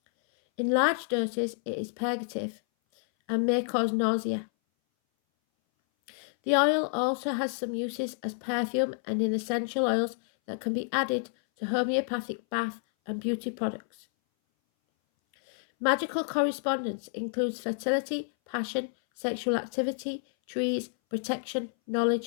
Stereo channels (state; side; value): silent; right; 58 dB below the other